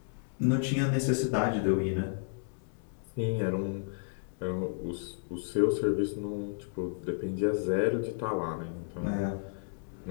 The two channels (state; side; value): silent; right; digital silence